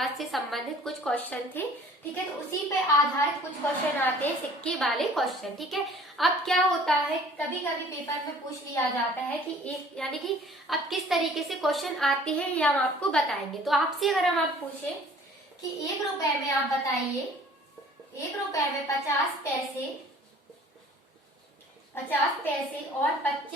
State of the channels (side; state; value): both; normal; correlation 0.51